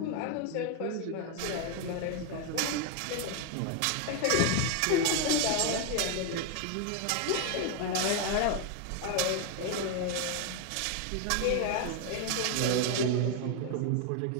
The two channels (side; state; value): both; different; correlation 0.01